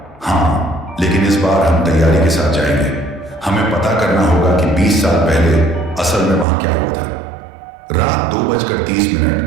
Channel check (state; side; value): drops out; left; at 6.5 s